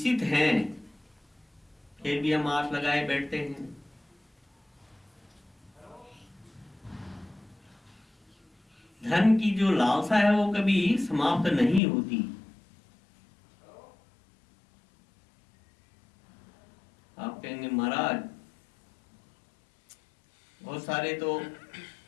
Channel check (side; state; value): right; drops out; at 11.8 s